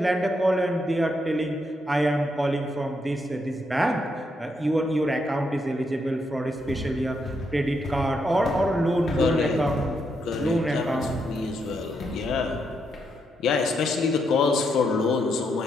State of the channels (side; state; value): both; normal; correlation 0.79